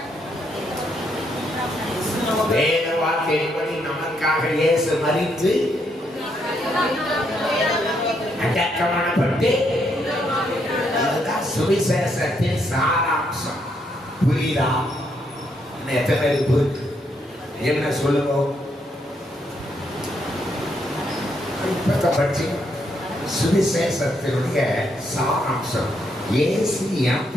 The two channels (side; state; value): both; normal; correlation 0.76